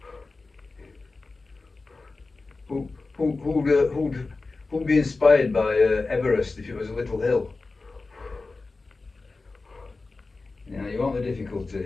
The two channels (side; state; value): right; quieter; 3.7 dB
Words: who'd be inspired by Everest if it was a little hill? You want the